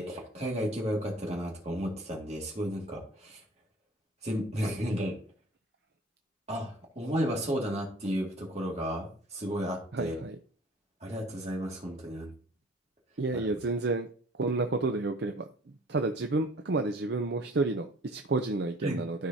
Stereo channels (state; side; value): normal; both; correlation 0.50